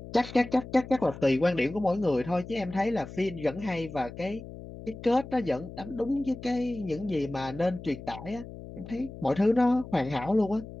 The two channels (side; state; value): left; noise; hum, 13 dB below the sound